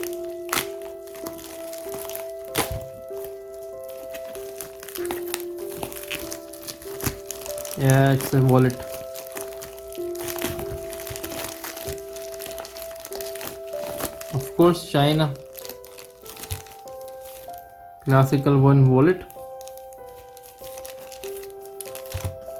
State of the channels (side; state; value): both; identical; correlation 1.00